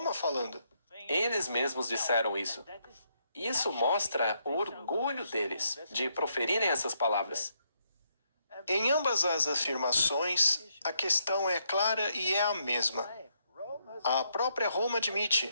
falando. Eles mesmos disseram isso. Isso mostra o orgulho deles de proferirem essas palavras. Em ambas as afirmações, a questão é clara e é a mesma. A própria Roma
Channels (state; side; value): inverted; both; correlation -0.76